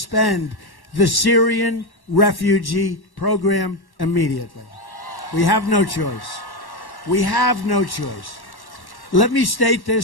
the Syrian refugee program immediately. We have no choice. We have no choice. Let me state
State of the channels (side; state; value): right; late; 1.1 ms